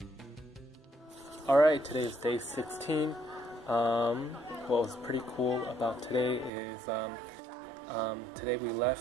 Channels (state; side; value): drops out; left; at 6.5 s